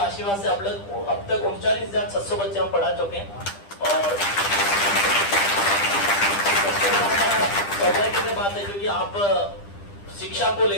से अब तक 39,600 बच्चे हम पढ़ा चुके हैं। और सौभाग्य की बात है क्योंकि आप शिक्षा को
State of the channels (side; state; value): right; late; 10 ms